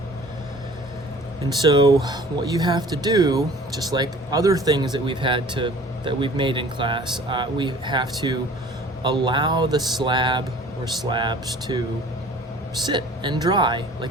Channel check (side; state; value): both; normal; correlation 0.48